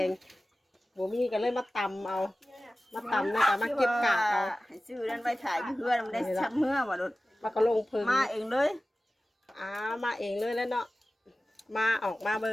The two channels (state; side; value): normal; both; correlation 0.96